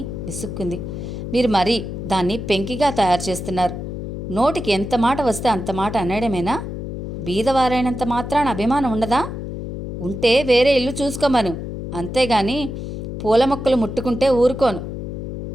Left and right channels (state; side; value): noise; left; hum, 6 dB below the sound